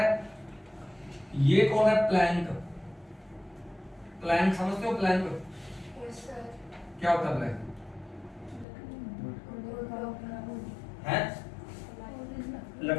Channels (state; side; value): drops out; right; at 8.7 s